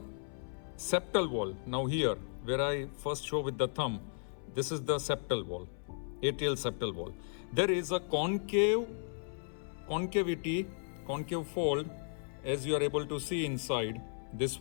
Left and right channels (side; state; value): right; silent; 54 dB below the other